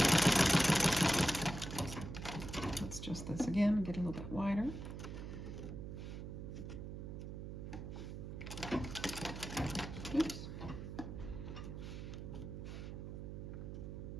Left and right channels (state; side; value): noise; right; hum, 8 dB below the sound